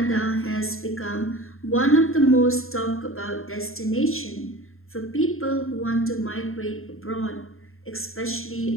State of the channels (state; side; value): late; right; 0.61 ms